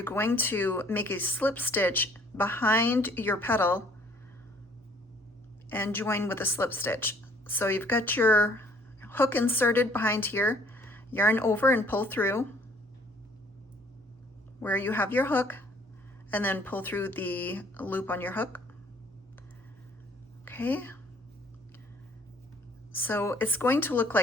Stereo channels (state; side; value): normal; both; correlation 0.58